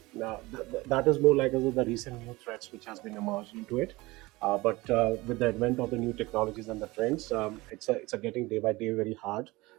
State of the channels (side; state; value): left; quieter; 21.3 dB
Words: is more like the recent new threats which has been emerged into it. But with the advent of the new technologies and the trends, it's a getting day by day very hard,